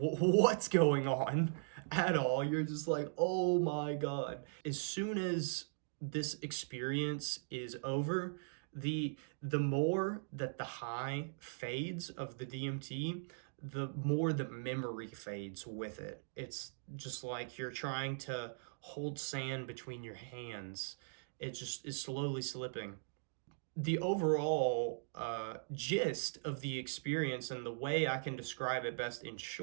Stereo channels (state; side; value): silent; left; digital silence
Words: going on at all. You're just like, oh my God. As soon as this experience is over, the more that the high fades of the DMT, the more the memory fades with it. It's just like you're trying to hold sand between your hands. It just is slowly slipping. The overall gist of the experience, and the way I can describe it best in